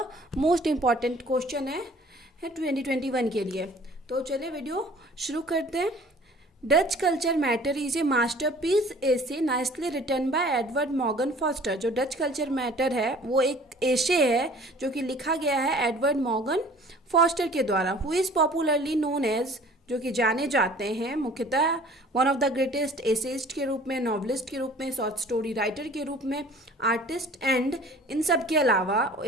most important question है 2021 के लिए। तो चलिए वीडियो शुरू करते हैं। Does culture matter is a masterpiece essay nicely written by Edward Morgan Forster. जो डच कल्चर मैटर है वो एक एसे है जो कि लिखा गया है एडवर्ड मॉर्गन फॉस्टर के द्वारा, who is popularly known as, जो कि जाने जाते हैं मुख्यतः one of the greatest essayist के रूप में, नॉवलिस्ट के रूप में, शॉर्ट स्टोरी राइटर के रूप में, आर्टिस्ट एंड इन सब के अलावा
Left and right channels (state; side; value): normal; both; correlation 0.50